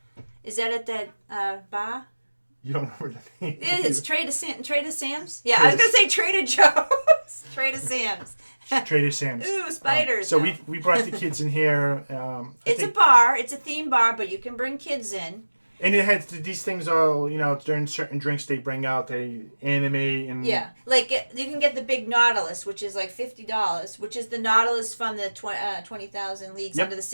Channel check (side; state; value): both; inverted; correlation -1.00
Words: Is that at that bar? You don't remember the name? It's Trader Sam's. Yeah, I was gonna say Trader Joe's. Trader Sam's. Trader Sam's. Ooh, spiders. So we brought the kids in here. It's a bar. It's a theme bar, but you can bring kids in. And it has these things all, during certain drinks they bring out, they animate and... Yeah, like you can get the big Nautilus, which is like $50, which is the Nautilus from the 20,000 Leagues Under the